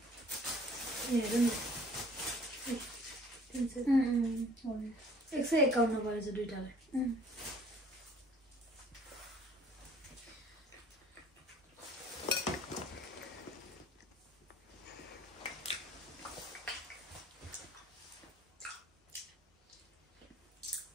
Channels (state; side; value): normal; both; correlation 0.54